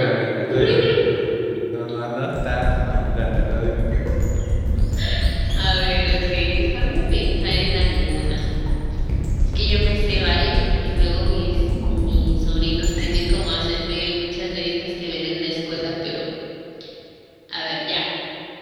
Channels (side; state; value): both; identical; correlation 1.00